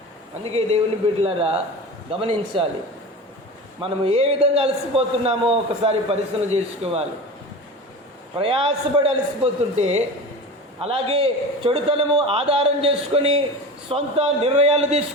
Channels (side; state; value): both; normal; correlation 0.31